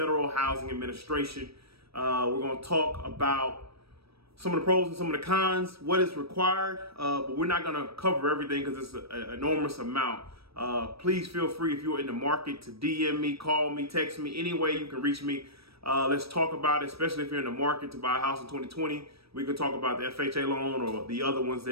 Housing Administration. We're going to talk about some of the pros and some of the cons, what is required, but we're not going to cover everything because it's an enormous amount. Please feel free, if you're in the market, to DM me, call me, text me, any way you can reach me. Let's talk about it, especially if you're in the market to buy a house in 2020. We can talk about the FHA loan or the other ones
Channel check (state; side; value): late; left; 0.77 ms